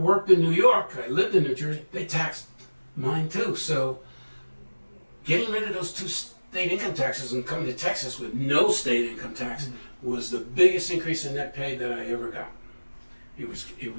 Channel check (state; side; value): inverted; both; correlation -1.00